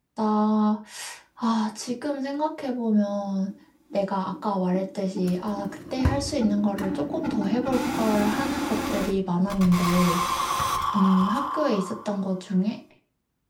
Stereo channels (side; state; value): both; identical; correlation 1.00